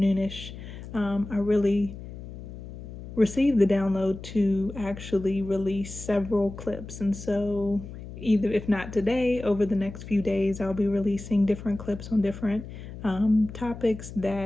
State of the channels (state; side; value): noise; left; hum, 12 dB below the sound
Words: I really received the download to actually release several clips. And so, either if not today, over the next few days, I'll be releasing different clips on different topics